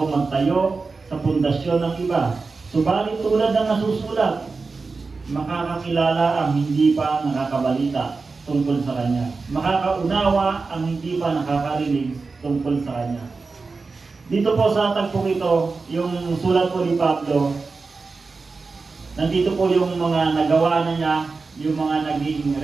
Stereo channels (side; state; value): left; quieter; 4.2 dB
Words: magtayo sa pundasyon ng iba. Subalit tulad ng nasusulat, makakakilala ang hindi pa nakakabalita tungkol sa Kanya. Makakaunawa ang hindi pa nakakarinig tungkol sa Kanya. Dito po sa tagpong ito, yung sulat po ni Pablo, nandito po yung mga nagawa na niya, yung mga naging